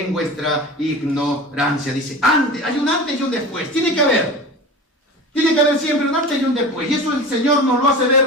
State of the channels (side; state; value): both; normal; correlation 0.33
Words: vuestra ignorancia. Dice, antes, hay un antes y un después. Tiene que haber siempre un antes y un después. Y eso el Señor nos lo hace